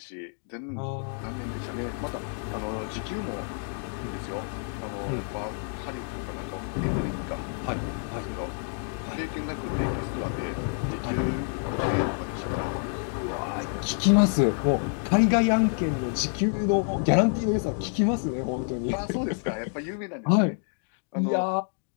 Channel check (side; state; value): right; silent; 59 dB below the other